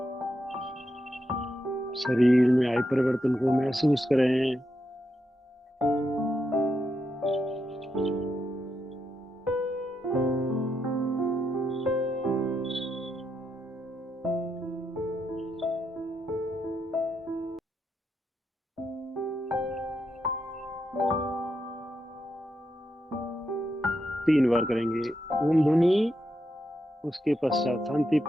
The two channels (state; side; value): normal; both; correlation 0.83